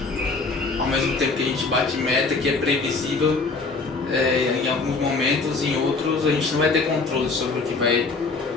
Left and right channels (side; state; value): right; quieter; 4.0 dB